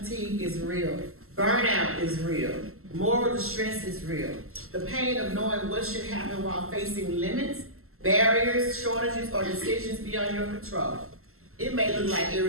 is real. Burnout is real. Moral distress is real. The pain of knowing what should happen while facing limits, barriers, shortages, or decisions beyond your control. It may look like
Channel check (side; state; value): left; late; 0.62 ms